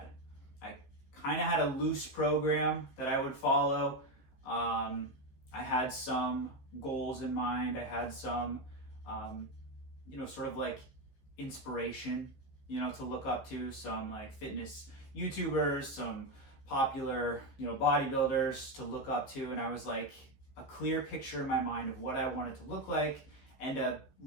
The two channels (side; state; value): right; late; 15 ms